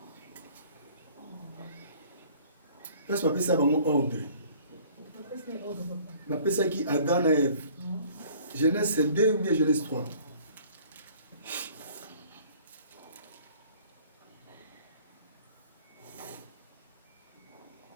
Parce que je ça mon ordre. Je m'appelle ça qui Adam et Ève. Genèse 2 ou bien Genèse 3.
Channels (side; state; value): both; inverted; correlation -0.53